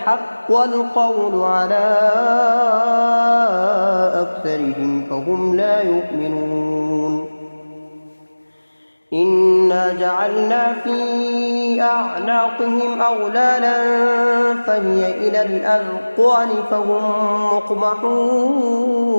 القول على أكثرهم فهم لا يؤمنون إنا جعلنا في أعناقهم أغلالا فهي إلى الأذقان فهم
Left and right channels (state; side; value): inverted; both; correlation -1.00